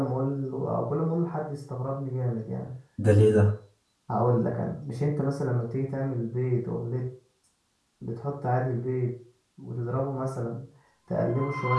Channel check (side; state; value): both; identical; correlation 1.00